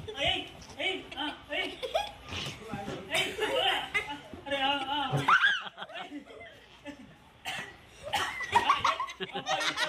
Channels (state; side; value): identical; both; correlation 1.00